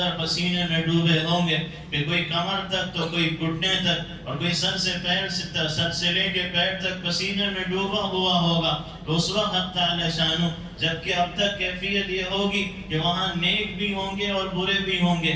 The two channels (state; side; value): identical; both; correlation 1.00